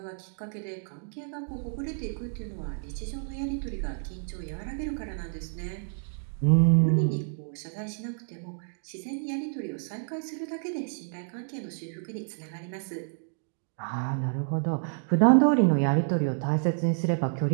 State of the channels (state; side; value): silent; left; digital silence